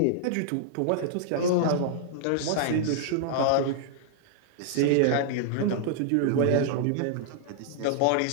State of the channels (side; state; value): both; different; correlation -0.01